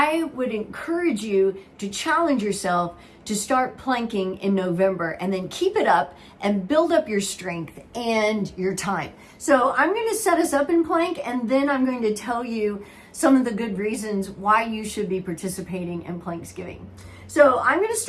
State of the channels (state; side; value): identical; both; correlation 1.00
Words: would encourage you to challenge yourself to start planking in November and then keep it up and build up your strength and your time. So I'm going to set us up in plank, and then I'm going to tell you some of the good reasons why you should be participating in Planksgiving. So I'm going to